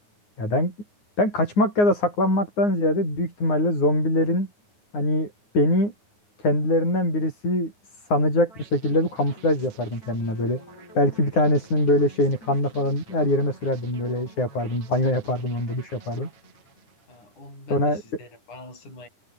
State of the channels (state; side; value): late; right; 9.7 ms